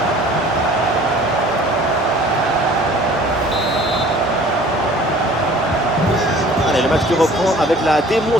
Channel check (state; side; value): normal; both; correlation 0.50